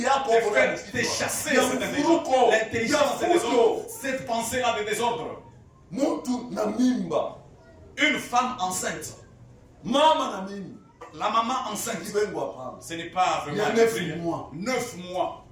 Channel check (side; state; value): both; identical; correlation 1.00